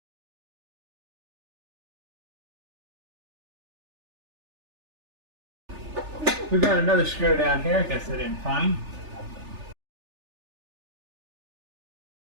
We've got another screw down here. I guess I didn't find.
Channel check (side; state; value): left; late; 3.4 ms